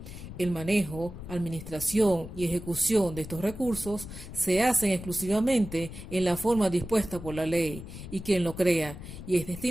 El manejo, administración y ejecución de estos recursos se hacen exclusivamente en la forma dispuesta por la ley y quien lo crea, y es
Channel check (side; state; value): left; noise; rumble, 12 dB below the sound